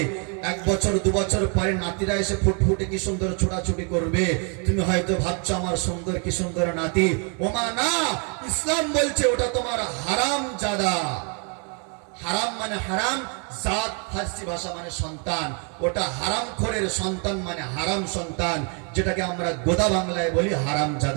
1 বছর 2 বছর পরে নাতিরা এসে ফুটফুটে কি সুন্দর ছোটাছুটি করবে, তুমি হয়তো ভাবছো আমার সুন্দর কি সুন্দর নাতি, ওমা না, ইসলাম বলছে ওটা তোমার হারাম জাদা। হারাম মানে হারাম, জাত ফার্সি ভাষা মানে সন্তান, ওটা হারামখোরের সন্তান মানে হারাম সন্তান, যেটাকে আমরা গোদা বাংলায় বলি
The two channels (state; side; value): quieter; left; 38.0 dB